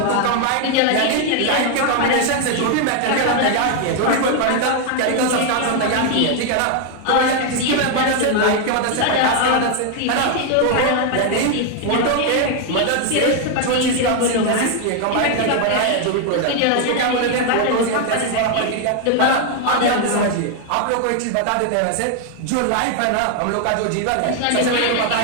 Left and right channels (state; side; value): different; both; correlation 0.00